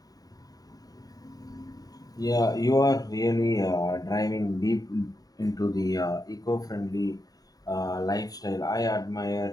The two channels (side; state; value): right; late; 0.18 ms